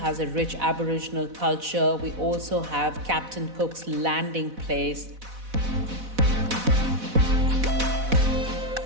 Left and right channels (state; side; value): late; left; 4.1 ms